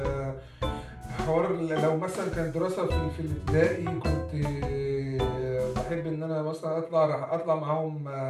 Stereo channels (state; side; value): identical; both; correlation 1.00